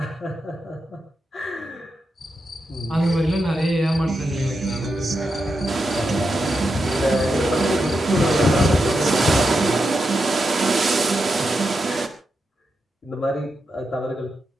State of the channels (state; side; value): normal; both; correlation 0.86